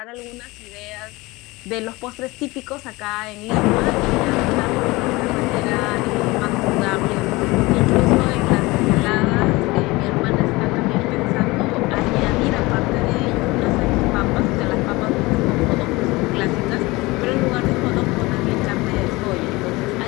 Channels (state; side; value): quieter; right; 22.1 dB